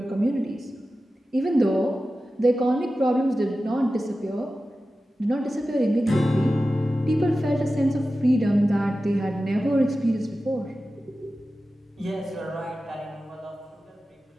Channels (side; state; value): both; normal; correlation 0.94